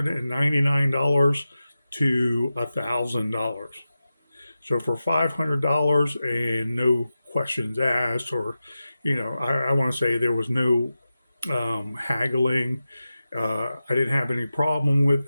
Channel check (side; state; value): both; inverted; correlation -0.93